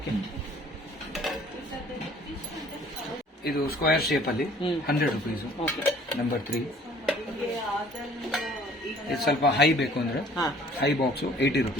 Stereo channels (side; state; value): both; normal; correlation 0.54